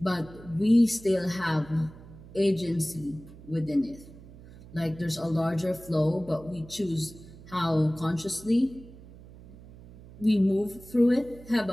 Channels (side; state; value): right; noise; hum, 19 dB below the sound